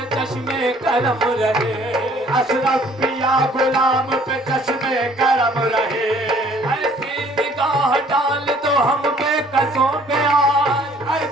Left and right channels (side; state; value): both; normal; correlation 0.57